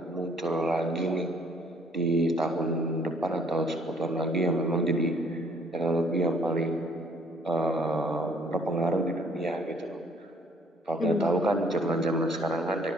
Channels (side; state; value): both; normal; correlation 0.61